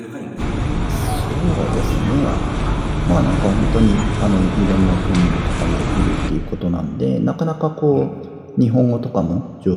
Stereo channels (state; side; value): identical; both; correlation 1.00